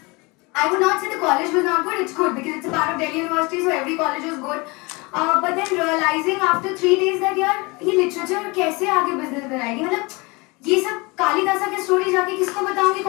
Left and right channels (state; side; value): quieter; right; 26.3 dB